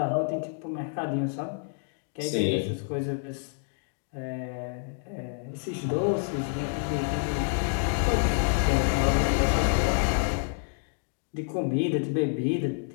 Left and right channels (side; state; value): right; silent; 59 dB below the other